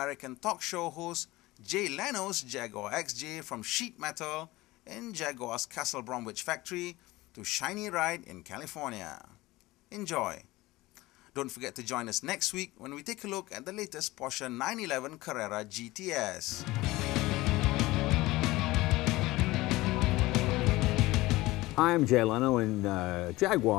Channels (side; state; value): right; quieter; 19.3 dB